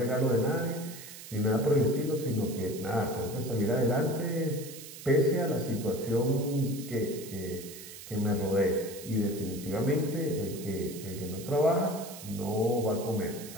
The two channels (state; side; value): noise; right; hiss, 14 dB below the sound